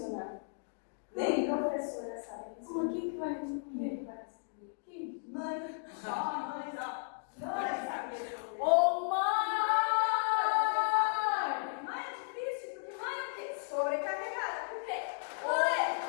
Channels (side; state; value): right; silent; digital silence